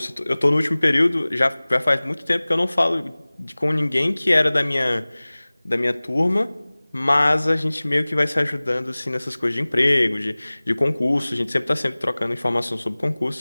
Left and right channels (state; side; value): inverted; both; correlation -1.00